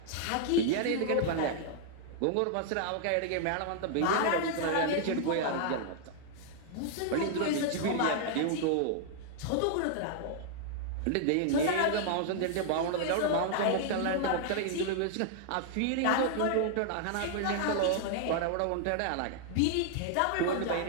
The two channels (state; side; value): different; both; correlation -0.01